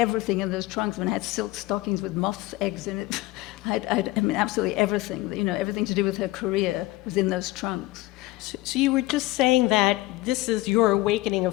in those trunks. When I had silk stockings with moth's eggs in it, I mean, absolutely everything, you know, everything to do with her career was in those trunks. So you were just saying that this is your awakening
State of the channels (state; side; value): quieter; right; 18.6 dB